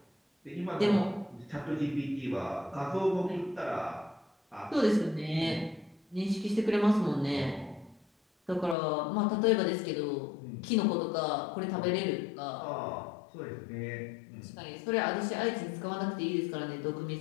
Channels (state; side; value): drops out; right; at 8.8 s